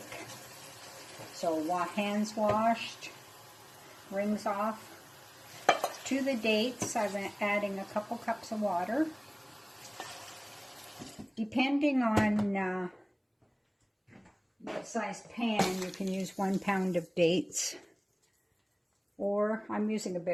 So hands washed, rings off. To the dates, I'm adding a couple cups of water. Depending on what size pan, you can use 1 pound of dates. Or I'm using a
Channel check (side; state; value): both; identical; correlation 1.00